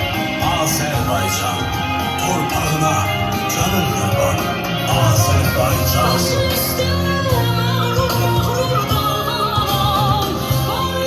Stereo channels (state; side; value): identical; both; correlation 1.00